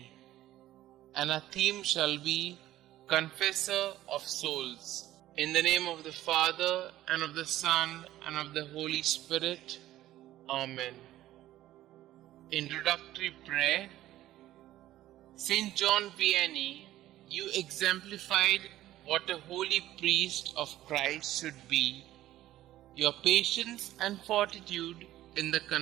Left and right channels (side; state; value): left; quieter; 14.4 dB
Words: and our theme shall be Confessor of Souls. In the name of the Father, and of the Son, and of the Holy Spirit. Amen. Introductory Prayer. St John Vianney, you exemplified what a holy priest of Christ should be. Your patience and fortitude in the